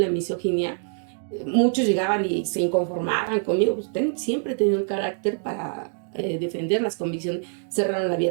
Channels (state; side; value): silent; left; 62 dB below the other